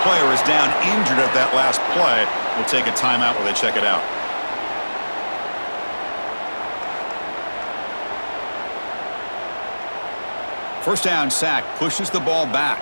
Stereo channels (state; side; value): inverted; both; correlation -1.00